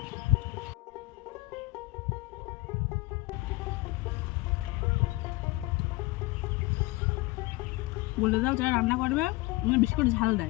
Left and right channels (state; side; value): quieter; right; 21.3 dB